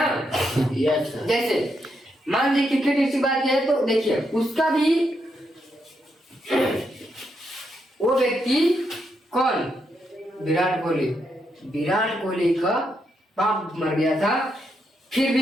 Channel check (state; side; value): normal; both; correlation 0.80